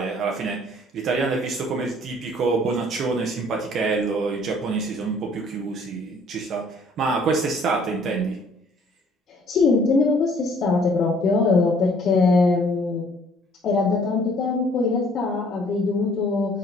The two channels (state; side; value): normal; both; correlation 0.58